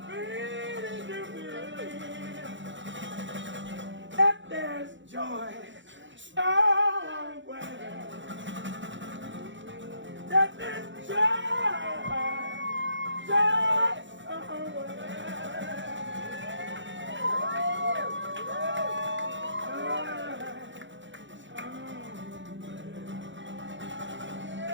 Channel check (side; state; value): left; late; 0.54 ms